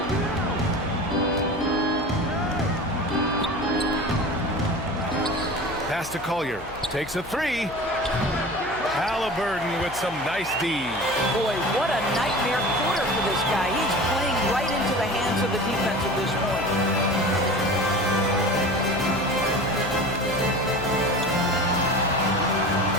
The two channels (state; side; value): noise; left; hum, 16 dB below the sound